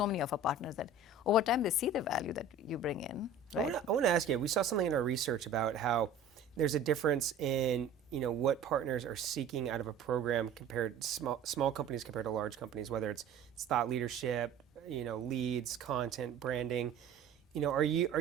many of our partners that over time they see the value that you bring in, right? I want to ask you, we saw something in our research about how there's a difference in what partners are seeking out of a program compared small companies compared to large companies, whether it's thought leadership, leads, content, branding. are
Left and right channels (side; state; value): left; quieter; 4.1 dB